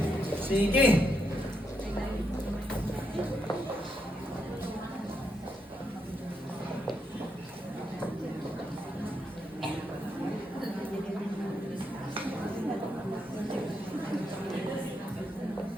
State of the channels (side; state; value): both; normal; correlation 0.81